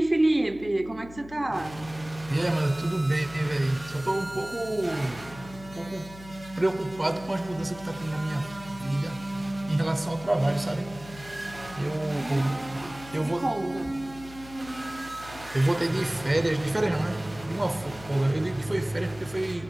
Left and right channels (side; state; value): left; noise; hum, 17 dB below the sound